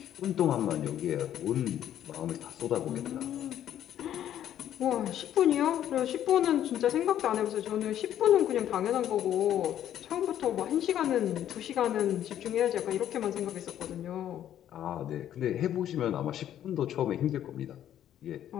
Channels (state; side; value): quieter; right; 11.0 dB